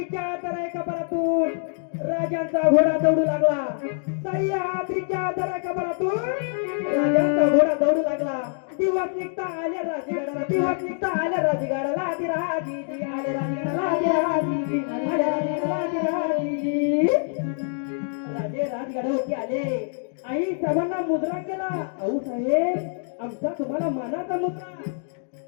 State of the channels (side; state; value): right; silent; digital silence